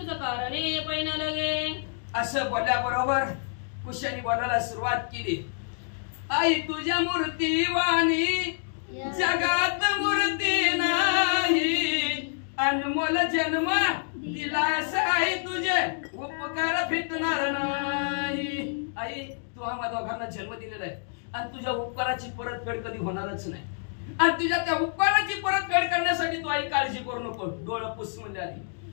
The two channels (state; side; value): silent; right; digital silence